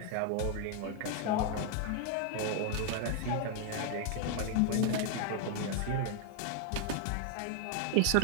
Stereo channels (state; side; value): different; both; correlation 0.00